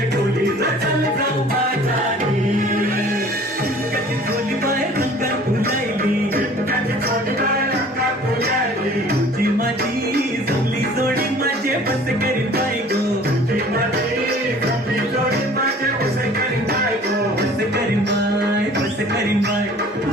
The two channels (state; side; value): normal; both; correlation 0.49